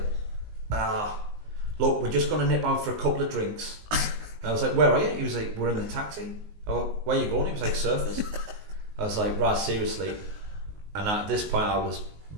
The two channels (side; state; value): left; late; 19 ms